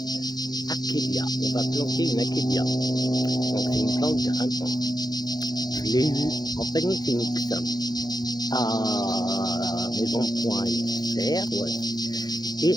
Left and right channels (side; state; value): right; late; 0.19 ms